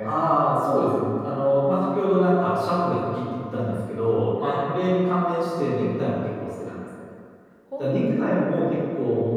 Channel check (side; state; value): both; identical; correlation 1.00